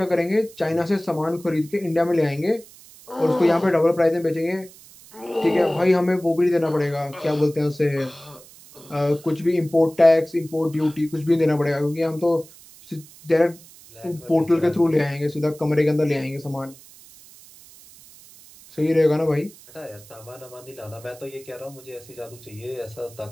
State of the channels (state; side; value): noise; right; hiss, 22 dB below the sound